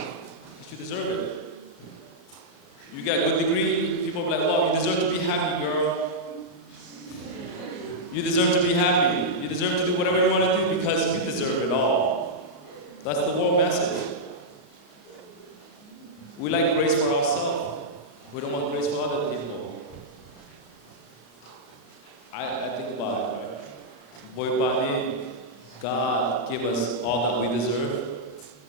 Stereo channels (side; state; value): right; late; 34 ms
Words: deserve it. You got a good degree, people are like, oh, you deserve to be happy, girl. You deserve to be happy. You deserve to do whatever you want to do because you deserve it all. That's the whole message. We like grace for ourselves. We don't want grace for other people. I think about it, right? Boy, about me, God give us all that we deserve.